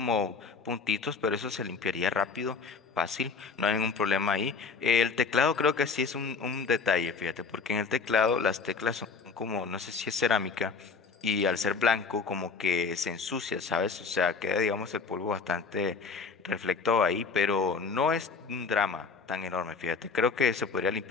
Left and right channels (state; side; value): quieter; right; 4.9 dB